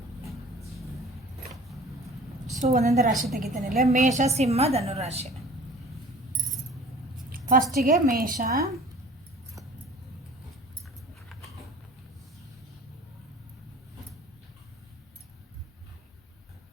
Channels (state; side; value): normal; both; correlation 0.46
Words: ಸೊ ಒಂದೊಂದು ರಾಶಿ ತೆಗಿತಾನಿಲ್ಲ. ಮೇಷ, ಸಿಂಹ, ಧನು ರಾಶಿ. ಫಸ್ಟಿಗೆ ಮೇಷ.